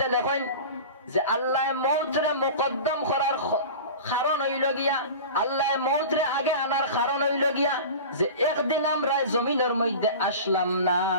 লেখেন যে আল্লাহ মওতরে মুকদ্দম করার কারণ হইল গিয়া, আল্লাহ মওতরে আগে আনার কারণ হইল গিয়া যে একদিন আমরা জমিনের মধ্যে আসলাম না,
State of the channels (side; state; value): both; inverted; correlation -0.34